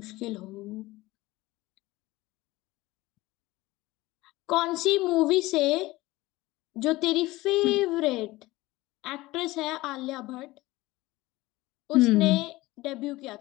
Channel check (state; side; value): quieter; right; 19.2 dB